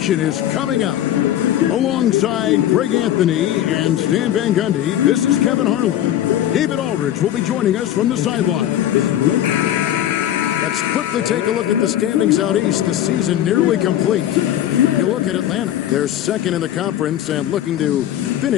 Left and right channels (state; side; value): quieter; right; 11.8 dB